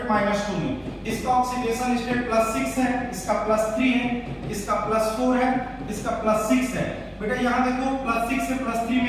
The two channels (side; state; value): both; identical; correlation 1.00